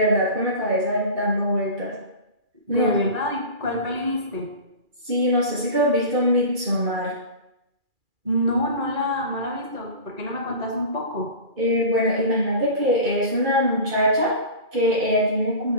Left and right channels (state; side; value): late; left; 2.3 ms